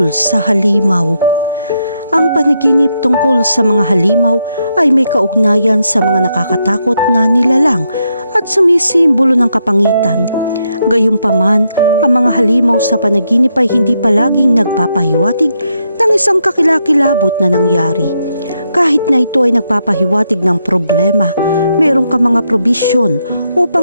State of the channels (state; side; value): inverted; both; correlation -0.80